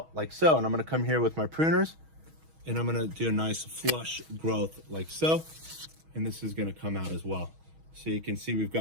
like so. And I'm going to come here with my pruners, and I'm going to do a nice flush growth like so, and this is going to come out as well. So you can see we've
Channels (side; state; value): left; late; 6.3 ms